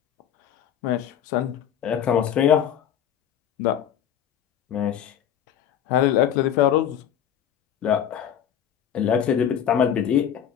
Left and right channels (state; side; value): quieter; right; 9.5 dB